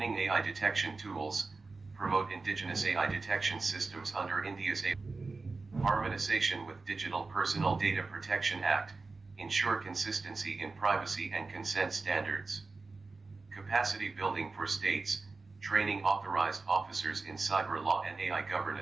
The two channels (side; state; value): left; quieter; 3.8 dB